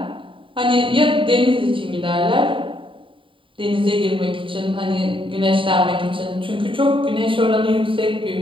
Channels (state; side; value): late; left; 0.25 ms